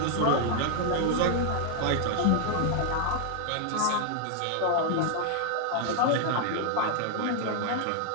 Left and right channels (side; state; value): both; different; correlation 0.00